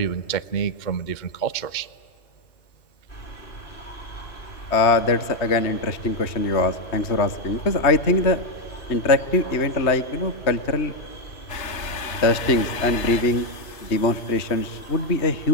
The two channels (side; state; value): right; late; 3.3 ms